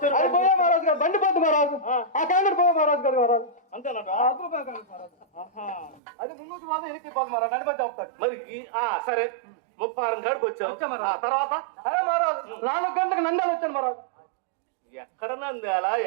అది పోయే మహారాజ్ గారు బండి పోతుంది మహారాజ్. ఆ క్యాండిడేట్ పోయే మహారాజ్ గారు మహారాజ్. అంతేనట. అది ముందుకు మాత్రం ఎనికి పోతుంది మహారాజ్. నడిపి చెప్తాడు. మరి సరే 36 కాడికి వచ్చావు. వచ్చా మహారాజ్. ఆ తర్వాత అరే మహారాజ్ 4 గంటలకు నంద్యాల వచ్చాను మహారాజ్. ఎక్కడ నంద్యాల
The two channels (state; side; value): drops out; left; at 6.0 s